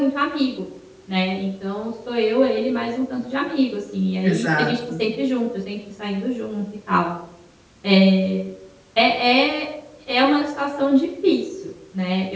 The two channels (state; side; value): identical; both; correlation 1.00